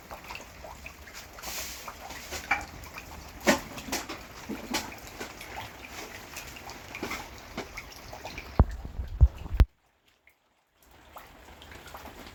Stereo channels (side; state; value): both; identical; correlation 1.00